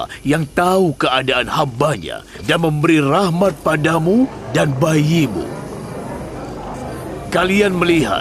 yang tahu keadaan hambanya dan memberi rahmat padamu dan bayimu. Kalian melihat,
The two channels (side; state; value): both; identical; correlation 1.00